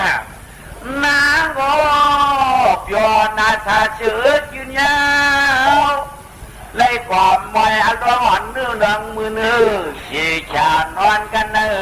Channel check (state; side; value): identical; both; correlation 1.00